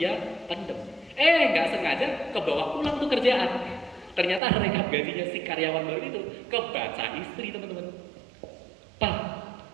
pendem. Nggak sengaja kebawa pulang tuh kerjaan. Ternyata rekap gajinya si karyawan baru itu kebaca istri teman-teman. Pak,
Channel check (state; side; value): drops out; left; at 4.4 s